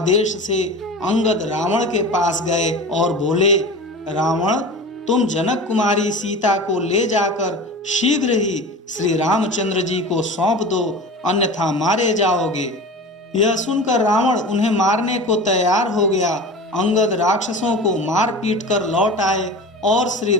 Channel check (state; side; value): normal; both; correlation 0.34